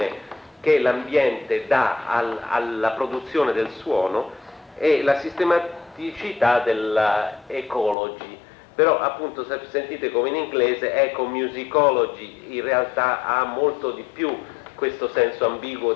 che l'ambiente dà alla produzione del suono, e la sistematicità della ecology. Però appunto, se sentite come in inglese, ecomusicology in realtà ha molto di più questo senso ambiguo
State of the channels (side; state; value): right; drops out; at 8.0 s